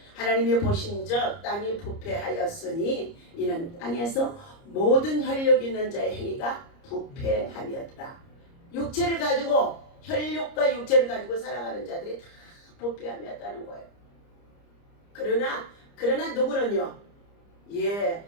하나님이 보신즉 땅이 부패하였으니 이는 땅에서 모든 혈육 있는 자의 행위가 부패함이었더라. 육체를 가지고 혈육과 육체를 가지고 살아가는 자들이 다 부패함이었다는 거예요. 그러나 누구는요?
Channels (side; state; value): right; late; 30 ms